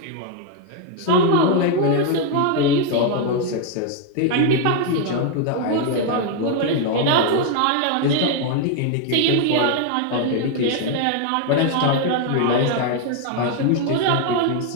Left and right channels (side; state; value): both; different; correlation 0.01